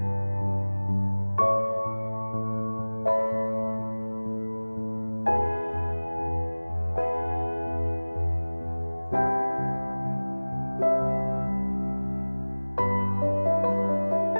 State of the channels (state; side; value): inverted; both; correlation -1.00